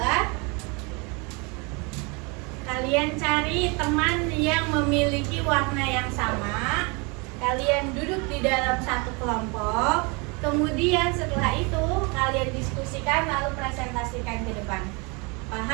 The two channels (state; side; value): quieter; left; 30.2 dB